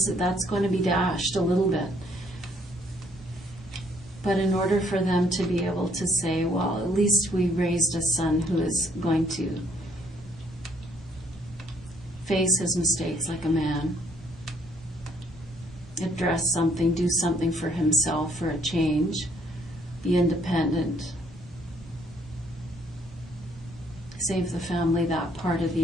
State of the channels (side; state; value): both; normal; correlation 0.67